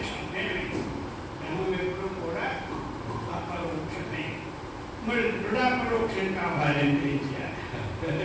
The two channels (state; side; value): identical; both; correlation 1.00